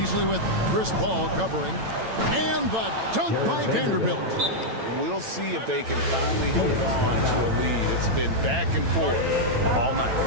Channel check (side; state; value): left; late; 9.0 ms